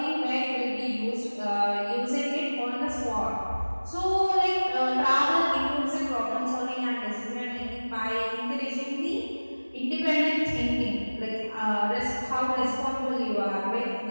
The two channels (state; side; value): inverted; both; correlation -1.00